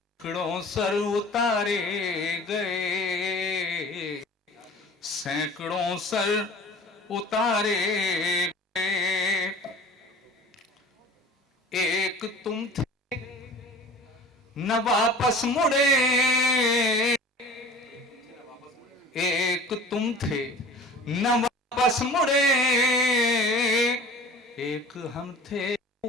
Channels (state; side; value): normal; both; correlation 0.42